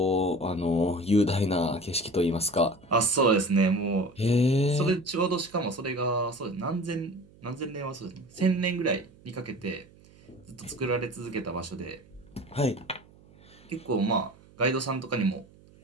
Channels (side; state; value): right; noise; hum, 26 dB below the sound